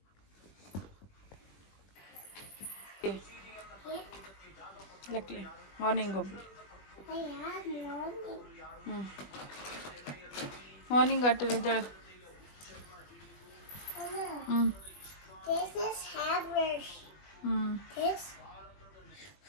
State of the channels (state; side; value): late; right; 20 ms